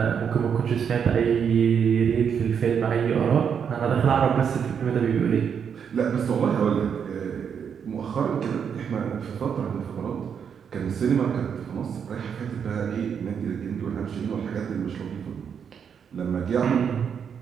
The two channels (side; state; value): left; quieter; 7.3 dB